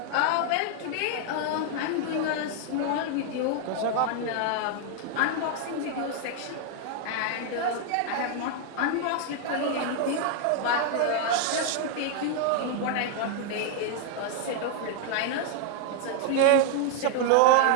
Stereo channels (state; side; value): different; both; correlation 0.00